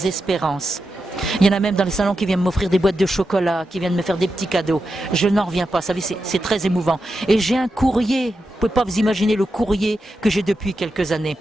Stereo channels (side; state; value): both; normal; correlation 0.88